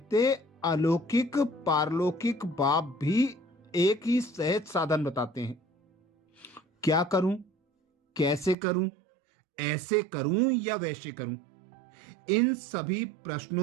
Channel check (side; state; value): left; drops out; at 8.6 s